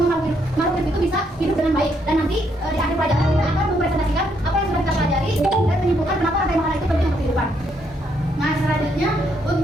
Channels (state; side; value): normal; both; correlation 0.74